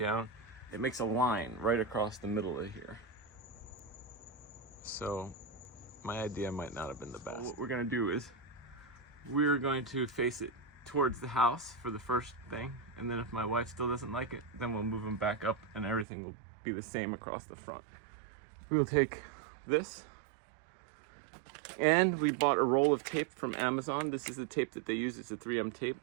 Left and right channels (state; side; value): drops out; left; at 16.1 s